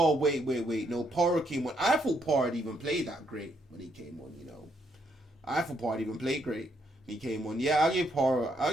wait. No, Porro came on. I thought Porro had even played that great when he came on, I thought Porro had even played great when he came on. Yeah, I'll give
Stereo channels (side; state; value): both; normal; correlation 0.74